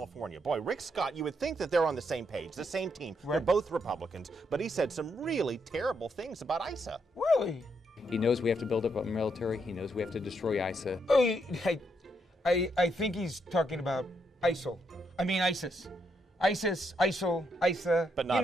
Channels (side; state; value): both; normal; correlation 0.78